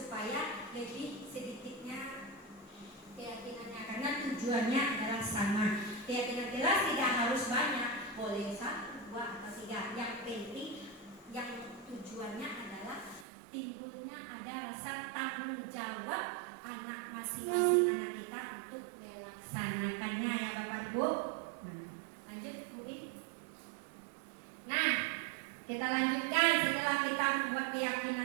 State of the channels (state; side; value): drops out; left; at 13.2 s